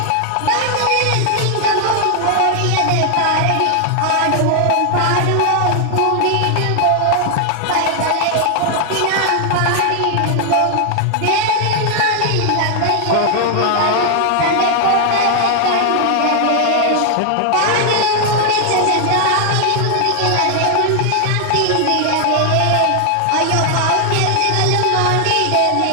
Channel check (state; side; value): different; both; correlation 0.00